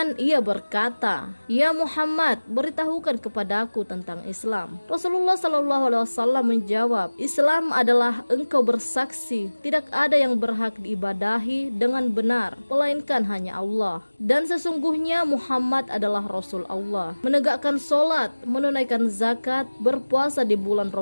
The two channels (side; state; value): both; inverted; correlation -1.00